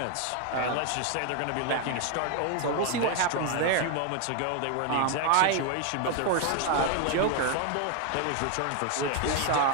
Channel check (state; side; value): different; both; correlation 0.01